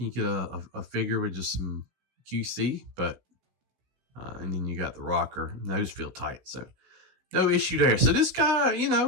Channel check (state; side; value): late; left; 16 ms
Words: you get a figure with just some QC, but and then you got the rocker, and those feel tight, so no issue there. So this guy,